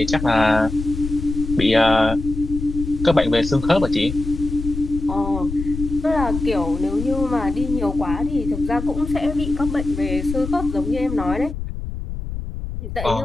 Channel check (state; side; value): noise; left; rumble, 7 dB below the sound